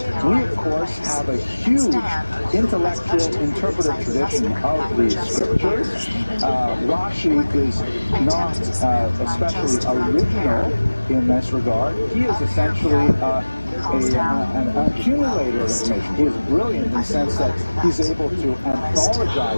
We, of course, have a huge intellectual interpretive tradition of the scriptures. Rashi is not especially original in this regard. He is essentially an accumulator of information. He is brilliant in the sense that he's able to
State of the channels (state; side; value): inverted; both; correlation -1.00